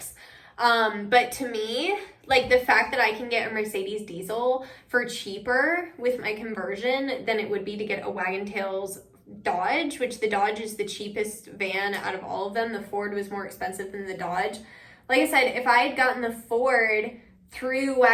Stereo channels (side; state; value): both; identical; correlation 1.00